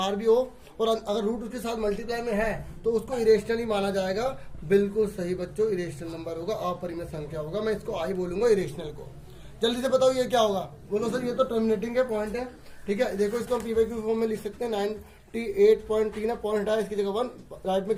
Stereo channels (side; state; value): both; identical; correlation 1.00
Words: भी हो और अगर रूट उसके साथ मल्टीप्लाई में है तो उसको इरेशनल ही माना जाएगा। बिल्कुल सही बच्चों, इरेशनल नंबर होगा, अपरिमेय संख्या होगा। मैं इसको आई बोलूंगा इरेशनल को। जल्दी से बताओ ये क्या होगा, बोलो सर ये तो टर्मिनेटिंग है, पॉइंट है, ठीक है। देखो इसको हम पी वाई क्यू फॉर्म में लिख सकते हैं। 98.3 है, पॉइंट है, इसकी जगह 1, राइट में